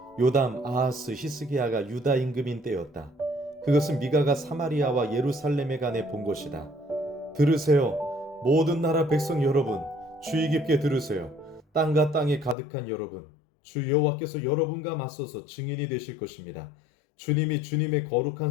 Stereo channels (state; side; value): drops out; right; at 12.6 s